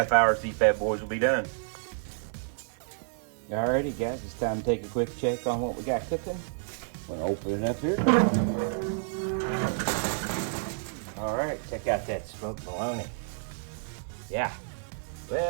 hours, these bad boys will be done. Alrighty guys, it's time to take a quick check on what we got cooking. I'm gonna open it up here. Alright, check out that smoked bologna. Yeah,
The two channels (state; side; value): silent; left; digital silence